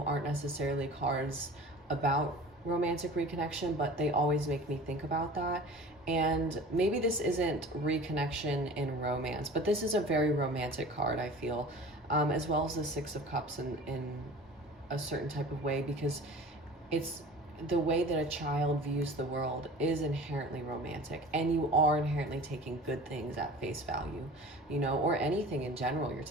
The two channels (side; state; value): both; normal; correlation 0.41